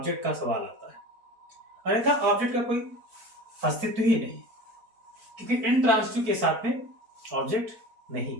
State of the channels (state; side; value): late; left; 4.5 ms